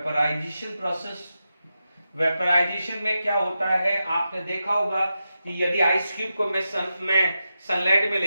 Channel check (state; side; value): inverted; both; correlation -0.89